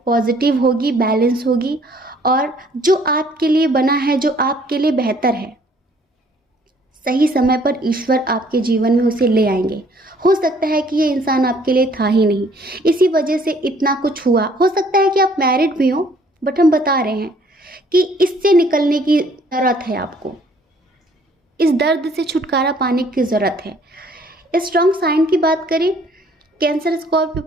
पॉजिटिव होगी, बैलेंस होगी और जो आपके लिए बना है, जो आपके लिए बेहतर है, सही समय पर ईश्वर आपके जीवन में उसे ले आएंगे। हो सकता है कि ये इंसान आपके लिए था ही नहीं, इसी वजह से इतना कुछ हुआ। हो सकता है कि आप मैरिड भी हो, बट हम बता रहे हैं कि इससे निकलने की ज़रूरत है आपको। इस दर्द से छुटकारा पाने की ज़रूरत है। स्ट्रॉन्ग साइन की बात करें, कैंसर, स्कॉर्पियो,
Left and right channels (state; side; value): normal; both; correlation 0.60